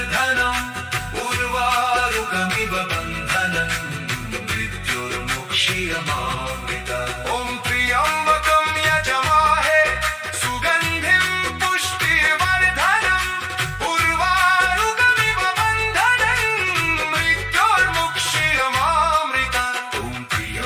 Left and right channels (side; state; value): both; identical; correlation 1.00